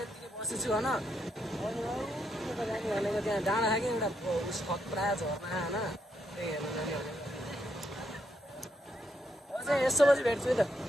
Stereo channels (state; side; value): normal; both; correlation 0.78